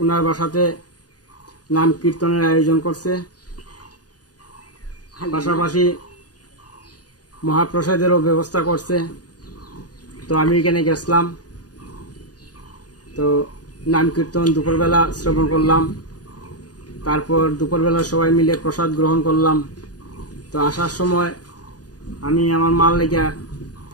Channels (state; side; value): late; right; 0.68 ms